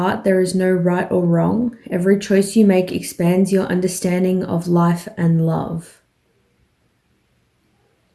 there is no right or wrong. Every choice you make expands your understanding of life and love.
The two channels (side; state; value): both; identical; correlation 1.00